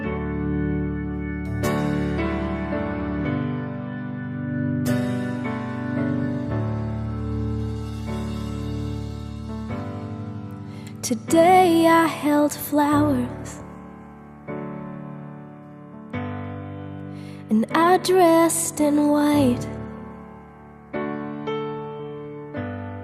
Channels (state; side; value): identical; both; correlation 1.00